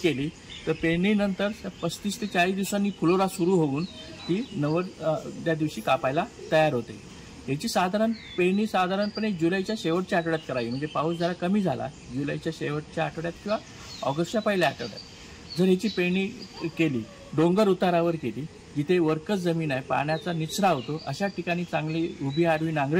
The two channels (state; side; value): identical; both; correlation 1.00